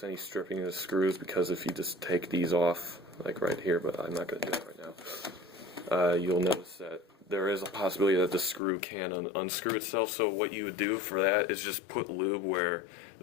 any stripping of the screws, because if you just take these off, like right here, but I'm not going to do that right now, you'll notice that there is a possibility that the screw can unscrew itself. So what you would do for that is just put lube where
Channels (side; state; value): right; drops out; at 8.6 s